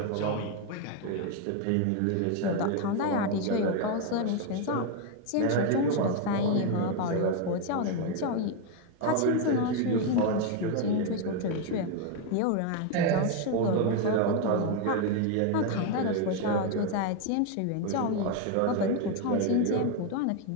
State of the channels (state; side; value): different; both; correlation 0.01